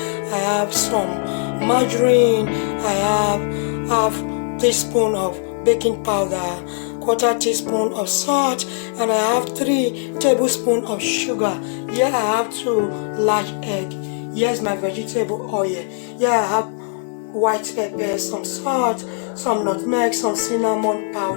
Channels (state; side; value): silent; right; 66 dB below the other